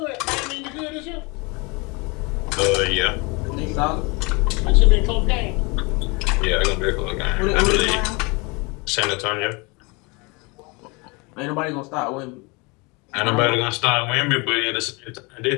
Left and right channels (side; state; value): right; quieter; 28.3 dB